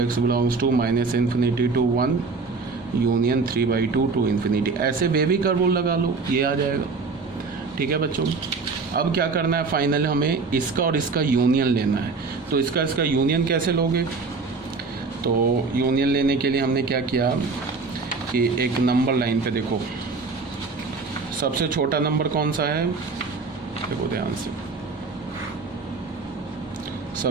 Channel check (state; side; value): quieter; left; 4.4 dB